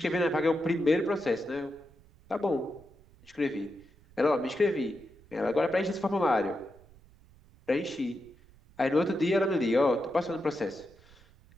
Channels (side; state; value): right; noise; rumble, 26 dB below the sound